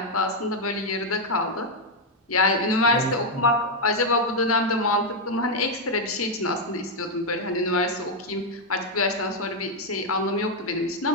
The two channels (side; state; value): both; normal; correlation 0.01